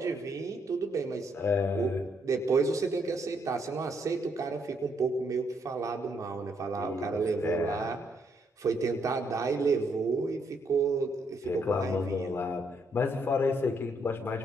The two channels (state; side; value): normal; both; correlation 0.73